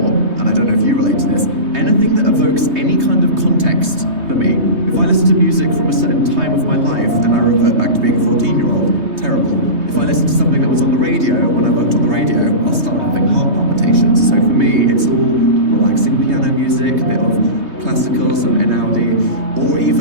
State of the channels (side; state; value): left; late; 3.2 ms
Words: and I don't know if you relate to this, anything that evokes any kind of context for me. If I listen to music from a certain time of my life and I revert back to being a 14-year-old, terrible. If I listen to something that was on the radio when I worked on the radio, I'll start having heart palpitations. So for me, it's all relaxing piano music, a bit of classical, some Einaudi, or